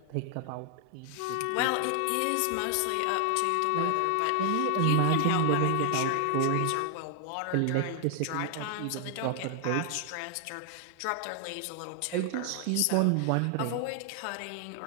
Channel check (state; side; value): different; both; correlation 0.00